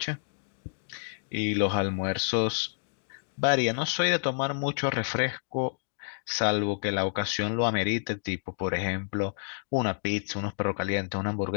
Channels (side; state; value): right; silent; 58 dB below the other